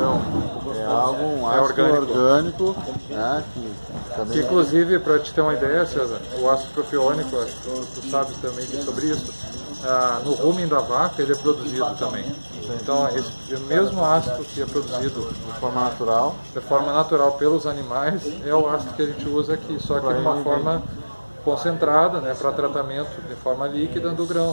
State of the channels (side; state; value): both; inverted; correlation -1.00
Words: É um ácido orgânico, né, que também... Inclusive, para te ter uma ideia, César, o ácido propiônico, tu sabes também sobre isso, no rumen da vaca ele é produzido também. Então, esse mesmo ácido que é produzido de forma natural pelos animais é o ácido que a gente usa aqui, só que de uma forma concentrada, né, para tratamento de forma líquida do